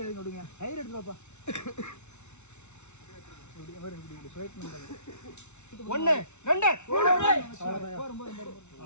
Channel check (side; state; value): right; late; 0.82 ms